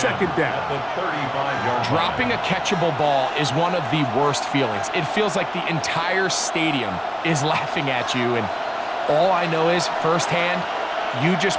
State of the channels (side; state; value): both; identical; correlation 1.00